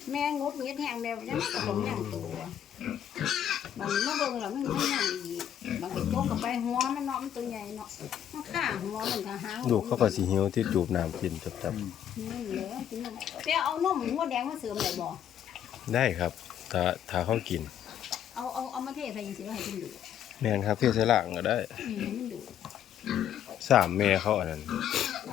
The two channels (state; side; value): quieter; right; 10.0 dB